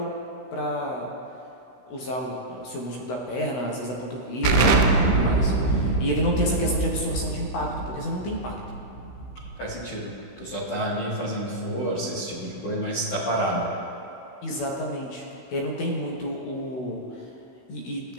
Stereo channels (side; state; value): right; late; 16 ms